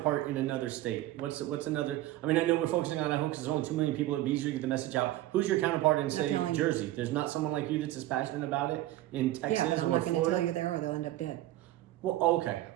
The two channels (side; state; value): left; quieter; 15.3 dB